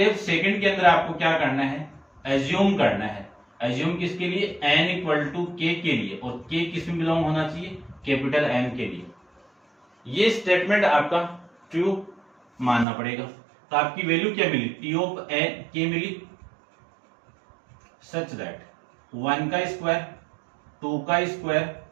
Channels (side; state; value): left; drops out; at 12.9 s